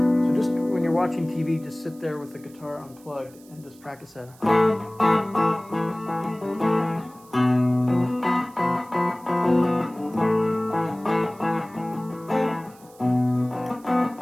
just when you're watching TV, just sit there with the guitar unplugged and just practice that.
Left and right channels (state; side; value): noise; right; hiss, 26 dB below the sound